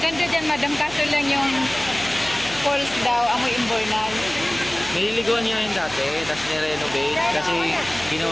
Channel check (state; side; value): noise; right; hum, 17 dB below the sound